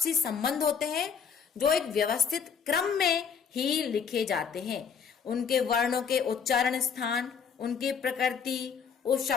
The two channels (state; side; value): quieter; right; 6.7 dB